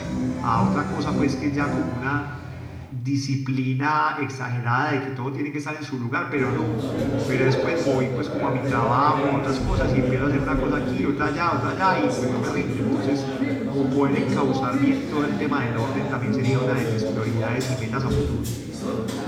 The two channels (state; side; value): identical; both; correlation 1.00